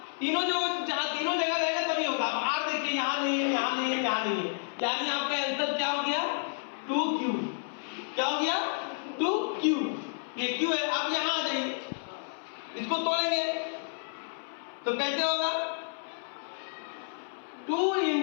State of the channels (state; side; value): silent; right; 57 dB below the other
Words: तीनों जो जहाँ तीनों जगह रहेगा तभी होगा। अब r देखिए यहाँ नहीं है, यहाँ नहीं है, यहाँ नहीं है, यानी आपका आंसर क्या हो गया, 2q, क्या हो गया, 2q, ये q है। अब यहाँ आ जाइए, इसको तोड़ेंगे तो कैसे होगा, 2 ×